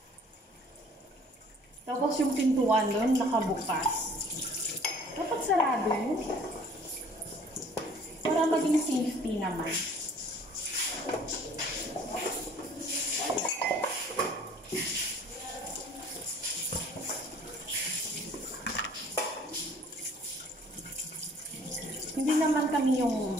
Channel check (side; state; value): both; normal; correlation 0.54